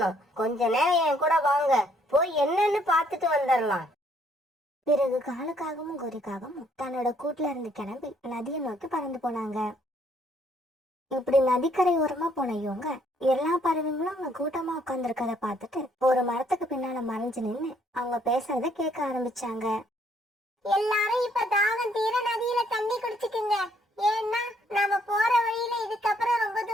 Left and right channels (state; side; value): normal; both; correlation 0.67